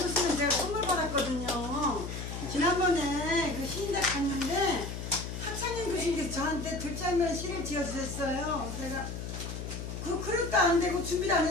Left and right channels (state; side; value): noise; left; hum, 6 dB below the sound